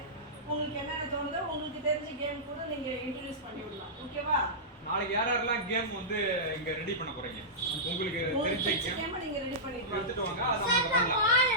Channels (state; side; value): normal; both; correlation -0.15